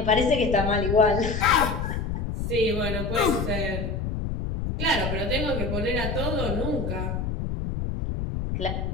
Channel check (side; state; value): left; noise; rumble, 3 dB below the sound